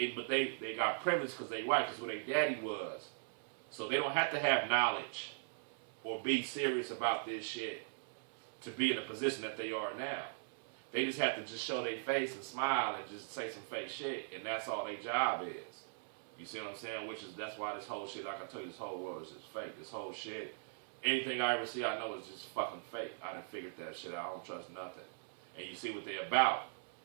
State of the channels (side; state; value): left; silent; 51 dB below the other